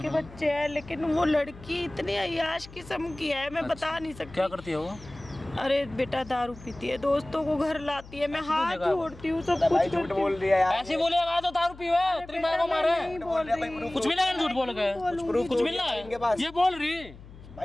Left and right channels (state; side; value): noise; left; hum, 18 dB below the sound